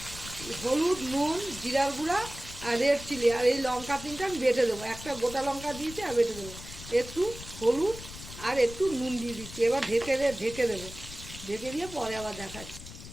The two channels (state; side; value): noise; left; rumble, 13 dB below the sound